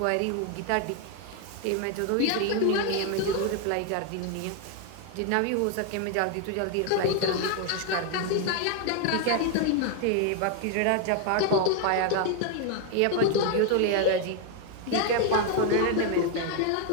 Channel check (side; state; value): both; different; correlation 0.01